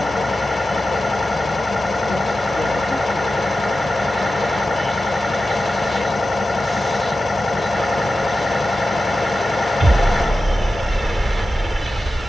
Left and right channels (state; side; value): normal; both; correlation 0.93